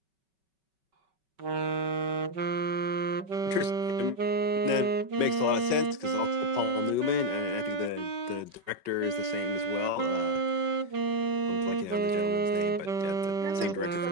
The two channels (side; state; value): left; late; 5.3 ms